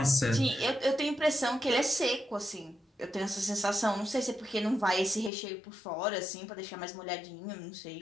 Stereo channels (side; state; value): right; drops out; at 5.3 s